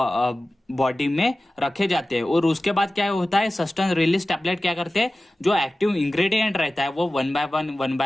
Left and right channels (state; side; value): normal; both; correlation 0.96